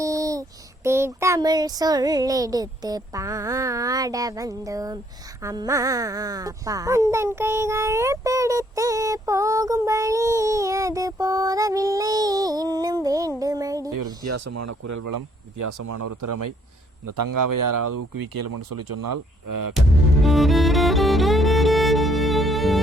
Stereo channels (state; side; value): normal; both; correlation 0.66